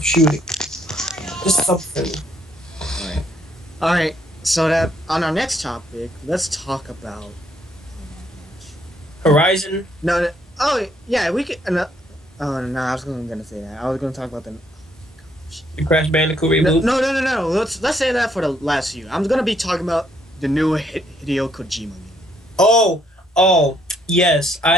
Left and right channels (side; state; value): both; normal; correlation 0.71